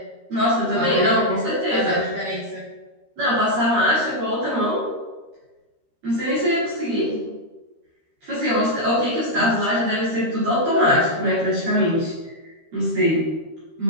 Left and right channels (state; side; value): late; left; 13 ms